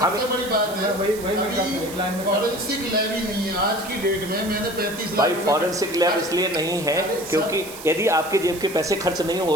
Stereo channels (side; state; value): right; noise; hiss, 14 dB below the sound